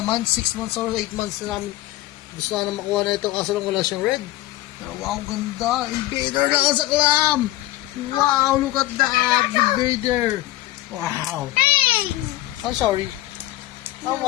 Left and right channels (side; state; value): right; quieter; 16.6 dB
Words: 6 months or 8 months na namin. Gusto na makuha na ito kaso lang wala siyang red. Pero wow, ganda. Invader na sa clam. Wow, look at that. Invader. Wow. I'm sorry.